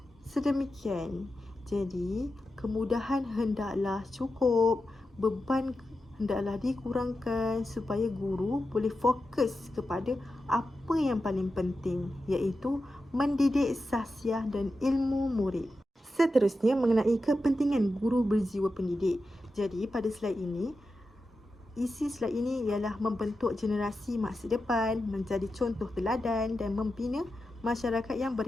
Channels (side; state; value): both; normal; correlation 0.90